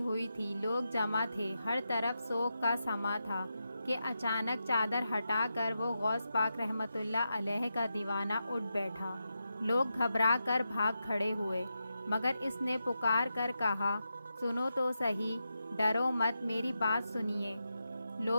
تھی، لوگ جمع تھے، ہر طرف سوگ کا سما تھا کہ اچانک چادر ہٹا کر وہ غوث پاک رحمۃ اللہ علیہ کا دیوانہ اٹھ بیٹھا۔ لوگ گھبرا کر بھاگ کھڑے ہوئے، مگر اس نے پکار کر کہا، سنو تو صحیح، ڈرو مت، میری بات سنیے۔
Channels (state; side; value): inverted; both; correlation -0.88